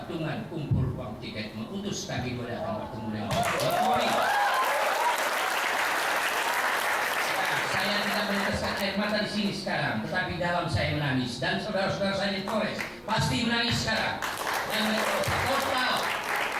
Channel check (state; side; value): identical; both; correlation 1.00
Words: kumpul uang tiket mengutus kami datang bertemu dengan Pak Jokowi. Saya tidak meneteskan air mata di sini sekarang, tetapi dalam saya menangis, dan saudara-saudara saya di Polres pasti menangis sekarang. Dan total